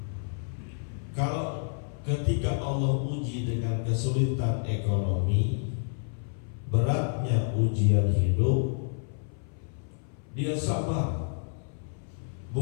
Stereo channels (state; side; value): silent; right; 56 dB below the other